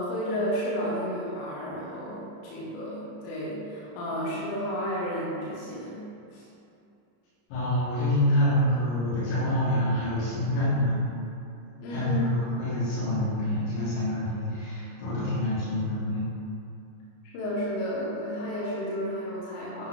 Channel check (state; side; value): late; right; 34 ms